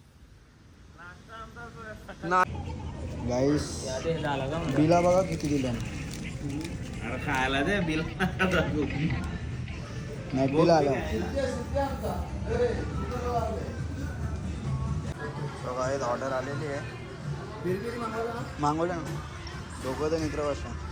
गाईस बिला बघा किती दिल्या. अरे खायला दे बिल नाही बिल आलं. गाईज ऑर्डर आलेली आहे. मागवलं ना दोघं तर मित्र बसा.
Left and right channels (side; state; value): both; identical; correlation 1.00